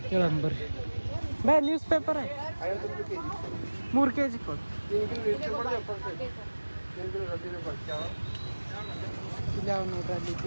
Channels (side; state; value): both; inverted; correlation -1.00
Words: ಕೇಳೋಣ ಬರ್ರಿ. ಬೇ ನ್ಯೂಸ್ ಪೇಪರ್ 3 kg ಕೊಡು. ಇಲ್ಲ ನೋಡ್ರಿ ಅಲ್ಲಿ